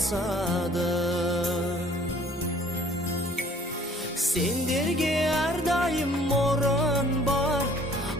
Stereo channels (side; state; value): both; normal; correlation 0.55